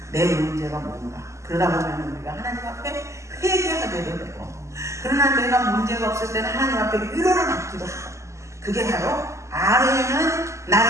내 문제가 뭔가. 그러다 보면 우리가 하나님 앞에 회개하게도 되고 그러나 내가 문제가 없을 때는 하나님 앞에 위로를 받기도 하고 그게 바로 아뢰는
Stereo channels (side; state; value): left; late; 0.14 ms